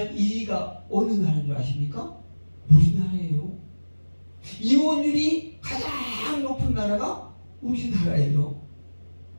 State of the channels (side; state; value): both; inverted; correlation -1.00